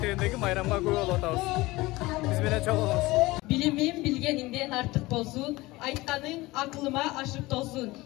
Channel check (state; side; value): quieter; right; 20.5 dB